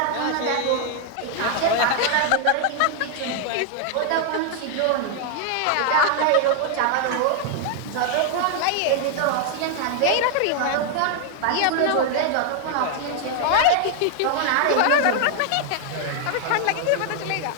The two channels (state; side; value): different; both; correlation 0.00